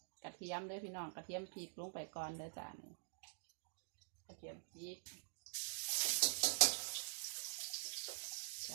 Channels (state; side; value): silent; left; digital silence